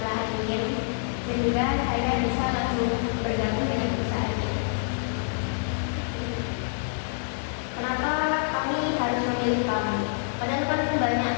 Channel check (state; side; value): silent; right; digital silence